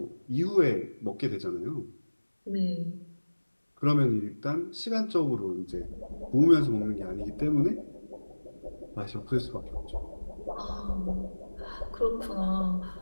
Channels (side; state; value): both; inverted; correlation -1.00